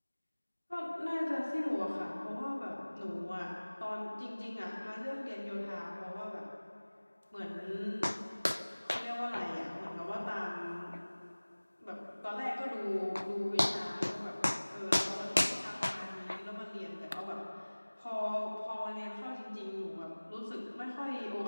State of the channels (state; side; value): inverted; both; correlation -1.00